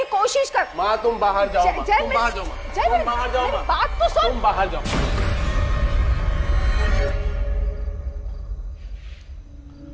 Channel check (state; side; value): identical; both; correlation 1.00